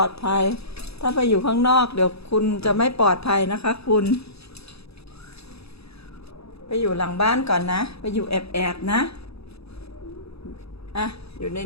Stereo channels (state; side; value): late; right; 0.78 ms